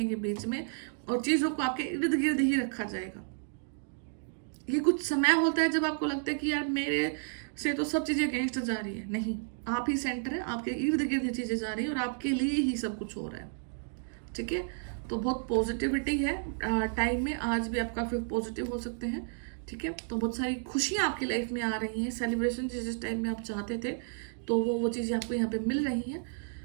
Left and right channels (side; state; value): left; silent; digital silence